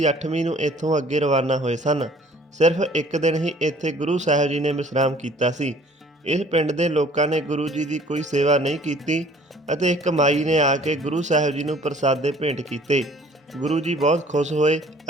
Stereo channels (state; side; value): normal; both; correlation 0.54